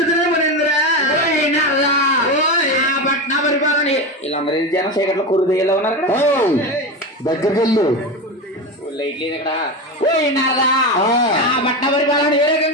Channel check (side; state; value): both; normal; correlation 0.19